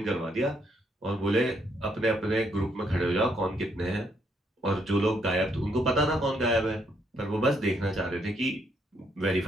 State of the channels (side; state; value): both; normal; correlation 0.73